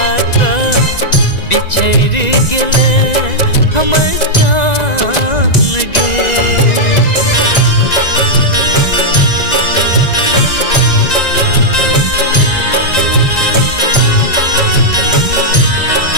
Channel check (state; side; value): late; right; 1.9 ms